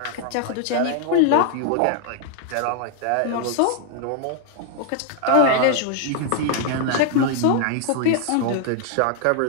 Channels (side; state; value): both; different; correlation 0.00